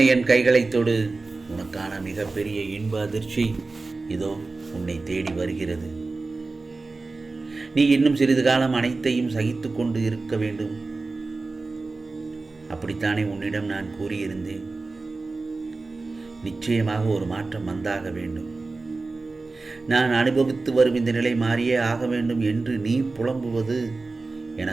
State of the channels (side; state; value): left; quieter; 3.6 dB